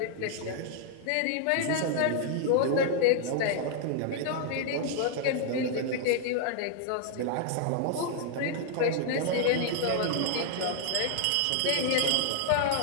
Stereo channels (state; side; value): different; both; correlation 0.00